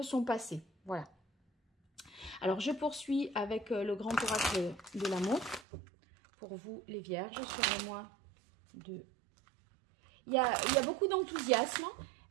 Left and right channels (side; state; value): left; drops out; at 5.7 s